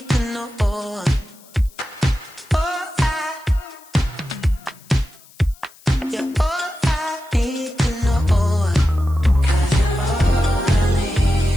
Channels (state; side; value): noise; left; hiss, 25 dB below the sound